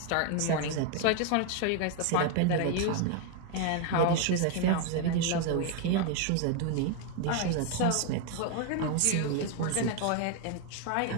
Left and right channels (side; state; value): both; different; correlation 0.01